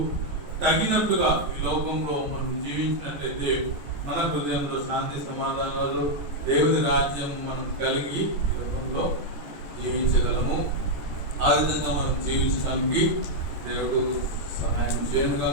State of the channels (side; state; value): left; late; 14 ms